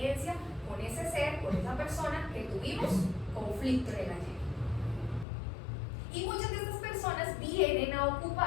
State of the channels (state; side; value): drops out; right; at 5.2 s